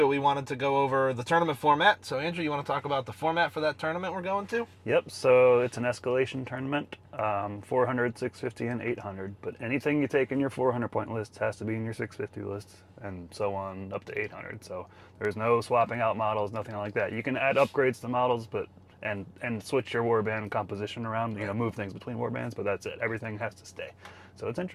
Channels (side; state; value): both; identical; correlation 1.00